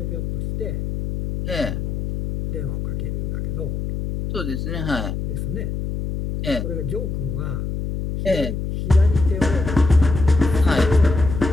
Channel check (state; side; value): noise; left; hum, 4 dB below the sound